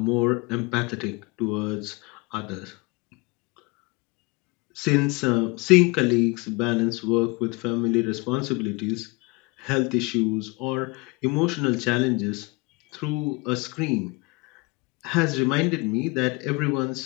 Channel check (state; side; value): quieter; right; 27.1 dB